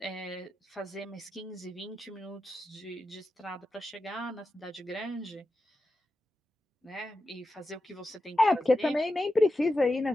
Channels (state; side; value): normal; both; correlation 0.90